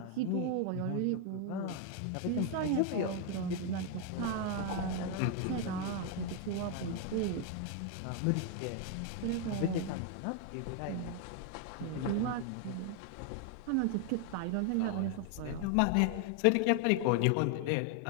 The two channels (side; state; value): both; different; correlation 0.01